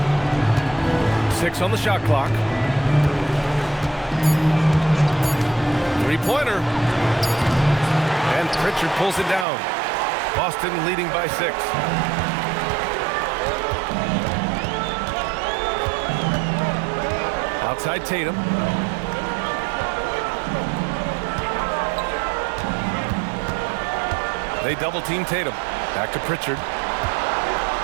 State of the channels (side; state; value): left; drops out; at 9.5 s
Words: 6 on the shot clock. Three-pointer. And Pritchard pulls it down. Boston leading by 6. Outside Tatum. They double-team Tatum. Back to Pritchard.